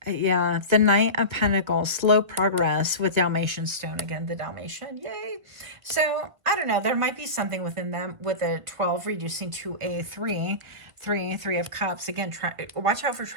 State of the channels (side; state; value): left; late; 1.8 ms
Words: Yeah, the Knight of Pentacles, slow progress with Dalmatian stone. Again, the Dalmatian, yay. So, I don't know. There might be something within them with a 12 reducing to a 3 of Cups. Again, watch out for